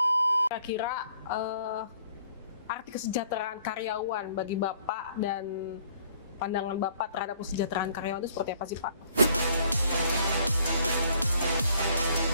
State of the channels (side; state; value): both; inverted; correlation -0.61